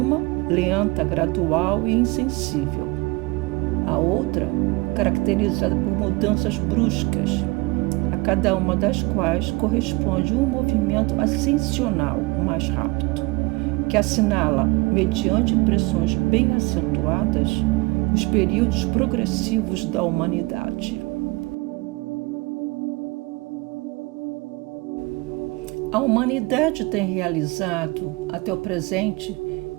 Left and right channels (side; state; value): left; quieter; 24.7 dB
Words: lenta, gradual e insensível. A outra, caracterizada por mudanças bruscas, a cada uma das quais corresponde um movimento ascensional mais rápido, que assinala, mediante impressões bem acentuadas, os períodos progressivos da humanidade. A humanidade tem realizado, até o presente,